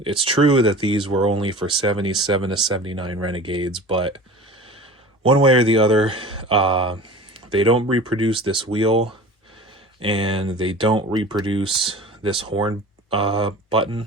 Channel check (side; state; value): both; normal; correlation 0.38